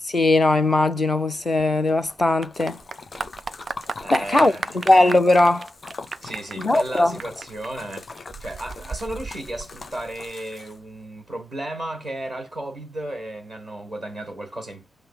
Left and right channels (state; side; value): normal; both; correlation 0.90